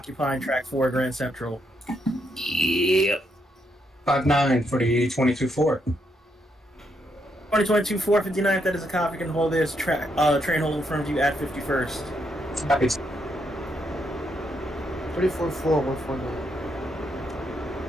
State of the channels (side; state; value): both; normal; correlation 0.77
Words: track 4, Grand Central. Yep. 59 for the 22-4. 2022 459th, that is a copy you can hold there as a train hold in front of you at 51st. Copy. 34-4, 149.